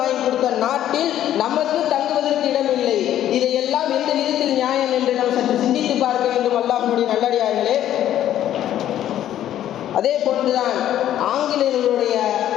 கொடுத்த நாட்டில் நமக்கு தங்குவதற்கு இடமில்லை. இதையெல்லாம் எந்த விதத்தில் நியாயம் என்று நாம் சற்று சிந்தித்து பார்க்க வேண்டும். அல்லாஹ்வுடைய நல்லடியார்களே, அதே போன்றுதான் ஆங்கிலேயர்களுடைய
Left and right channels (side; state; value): right; quieter; 11.7 dB